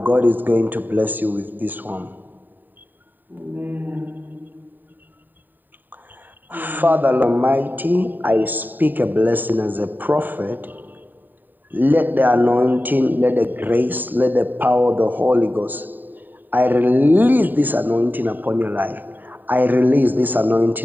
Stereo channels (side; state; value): left; late; 0.090 ms